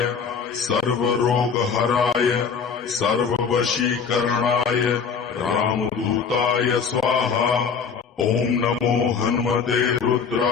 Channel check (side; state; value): right; quieter; 6.2 dB